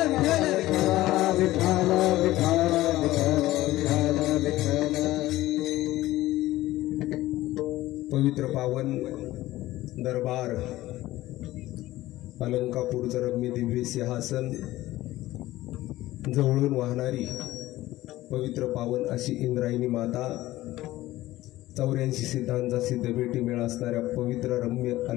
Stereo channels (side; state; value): right; quieter; 16.4 dB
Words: विठाल विठाल विठाल विठाल। पवित्र पावन दरबार अलंकापूरचं रम्य दिव्य सिंहासन जवळून वाहणारी पवित्र पावन अशी इंद्रायणी माता 84 सिद्धांचा सिद्धभेटी मेळा असणाऱ्या पवित्र रम्य